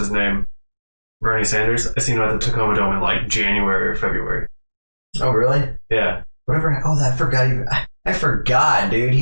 name? Bernie Sanders. I seen him at the Tacoma Dome in like January or February. Oh really? Yeah. Whatever. Oh, I forgot, dude.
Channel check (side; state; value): both; inverted; correlation -1.00